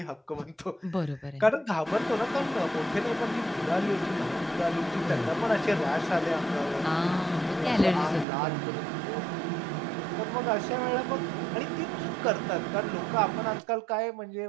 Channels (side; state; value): left; drops out; at 8.2 s